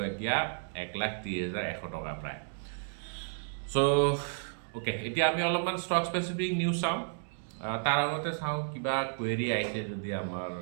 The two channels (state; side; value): silent; left; digital silence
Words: এতিয়া 1,30,100 টকা প্ৰায়। চ' অ'কে, এতিয়া আমি অলপমান ষ্টক স্পেচিফিক নিউজ চাওঁ। তাৰ আগতে চাওঁ কিবা কুৱেৰি আহিছে যদি আমাৰ